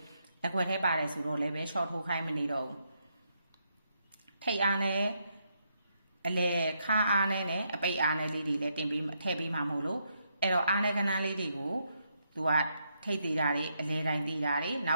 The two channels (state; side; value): inverted; both; correlation -0.78